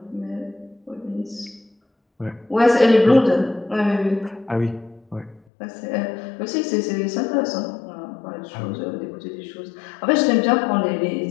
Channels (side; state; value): right; drops out; at 5.4 s